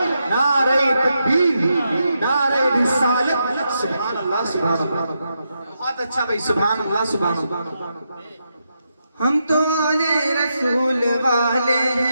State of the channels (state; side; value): inverted; both; correlation -0.84